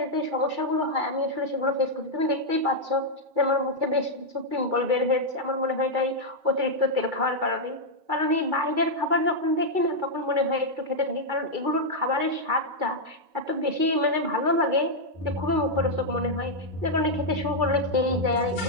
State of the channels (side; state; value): left; late; 2.3 ms